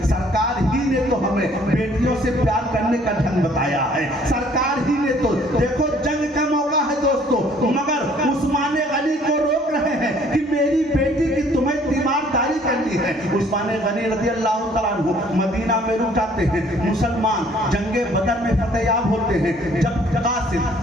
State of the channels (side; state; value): both; normal; correlation 0.59